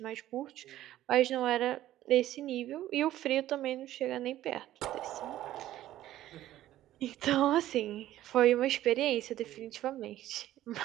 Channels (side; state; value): left; quieter; 13.8 dB